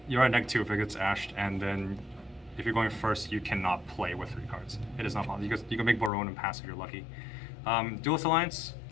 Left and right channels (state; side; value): drops out; right; at 6.1 s